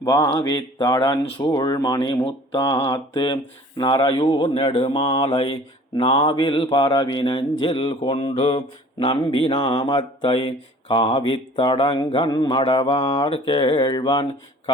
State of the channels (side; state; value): both; normal; correlation 0.49